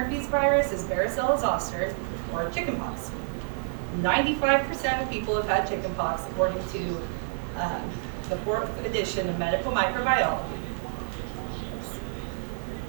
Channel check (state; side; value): silent; left; digital silence